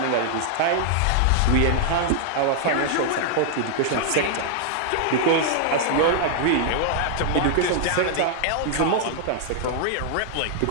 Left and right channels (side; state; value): both; different; correlation -0.01